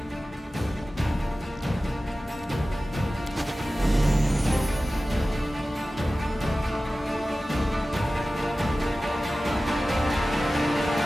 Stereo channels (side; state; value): both; normal; correlation 0.96